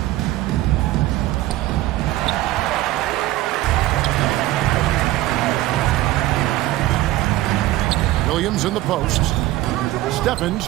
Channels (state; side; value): quieter; left; 16.4 dB